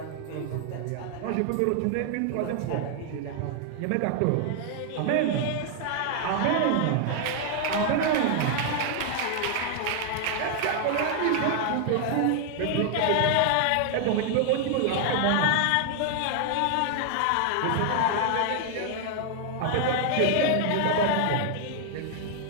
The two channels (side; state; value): both; different; correlation 0.00